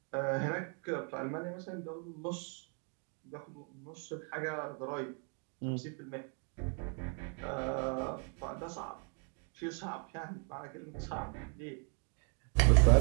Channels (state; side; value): quieter; left; 37.0 dB